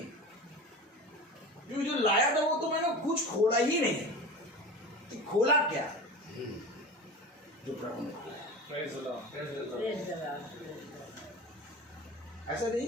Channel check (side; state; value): both; normal; correlation 0.31